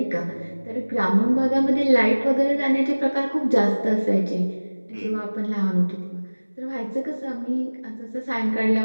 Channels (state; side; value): inverted; both; correlation -1.00